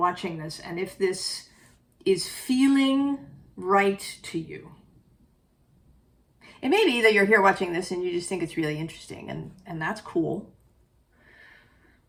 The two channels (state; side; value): identical; both; correlation 1.00